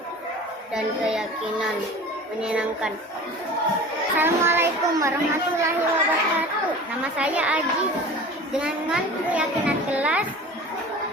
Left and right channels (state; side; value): normal; both; correlation 0.39